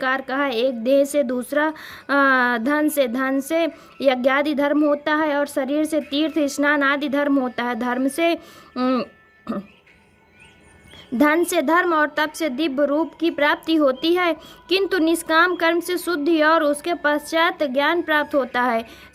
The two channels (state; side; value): identical; both; correlation 1.00